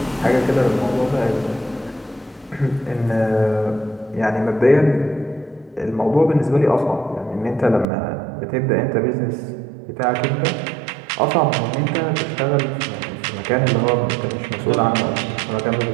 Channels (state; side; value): drops out; left; at 7.9 s